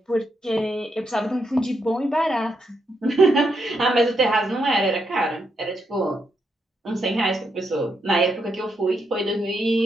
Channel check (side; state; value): both; normal; correlation 0.80